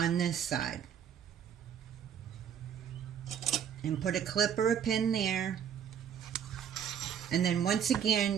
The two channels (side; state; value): left; quieter; 8.5 dB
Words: this side. And put a clip or a pin there. And then once again,